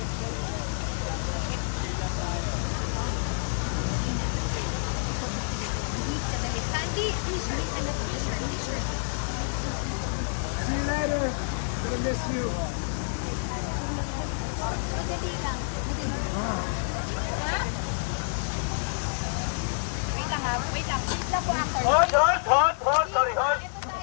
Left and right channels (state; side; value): silent; right; digital silence